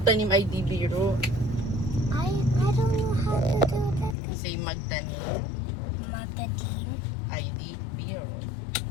ay di biro. I don't know how to do that. Say magtanim Matadim, ay di biro.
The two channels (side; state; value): right; drops out; at 4.2 s